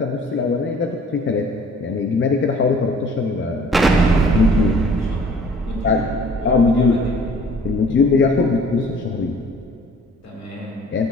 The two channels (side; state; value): both; normal; correlation 0.52